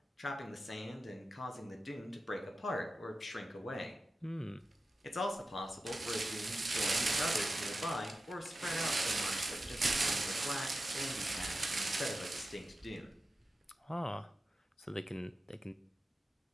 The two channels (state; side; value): normal; both; correlation 0.92